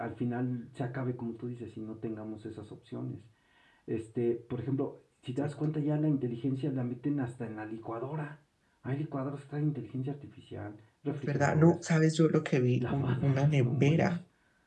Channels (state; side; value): identical; both; correlation 1.00